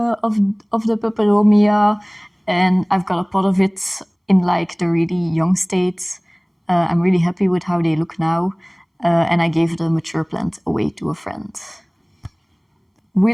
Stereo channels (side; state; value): both; identical; correlation 1.00